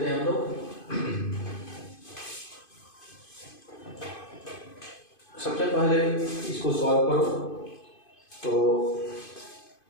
हैं हम लोग। सबसे पहले इसको सॉल्व करो, तो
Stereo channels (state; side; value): late; right; 2.5 ms